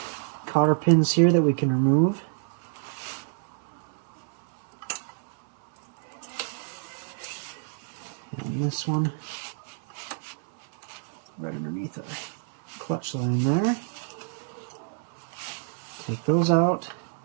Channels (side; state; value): left; silent; digital silence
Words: cotter pins here that we can remove. And this one, right underneath our clutch line there. Take those out.